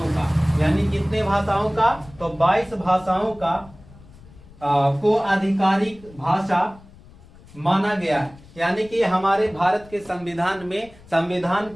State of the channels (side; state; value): left; noise; rumble, 23 dB below the sound